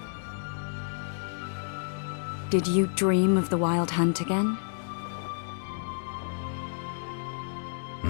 Did you dream of the Wild Hunt again?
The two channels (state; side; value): silent; right; digital silence